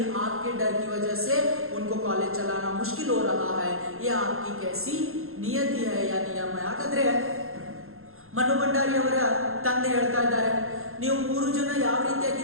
आपके डर की वजह से उनको कॉलेज चलाना मुश्किल हो रहा है. ये आपकी कैसी नियति है या नियम है. ಹಾಗಾದ್ರೆ ಮನು ಭಂಡಾರಿ ಅವರ ತಂದೆ ಹೇಳ್ತಾ ಇದ್ದಾರೆ, ನೀವು 3 ಜನ ಯಾವ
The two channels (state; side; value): late; left; 0.61 ms